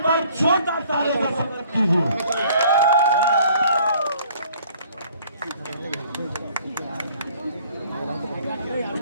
बार छोटा ताली का स्वागत कीजिए।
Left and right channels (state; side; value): inverted; both; correlation -0.57